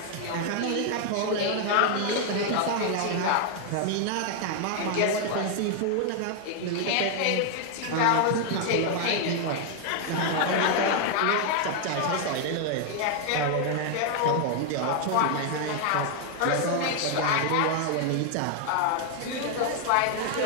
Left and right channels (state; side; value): different; both; correlation 0.00